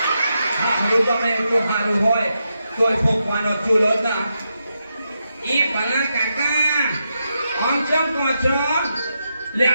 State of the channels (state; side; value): inverted; both; correlation -0.85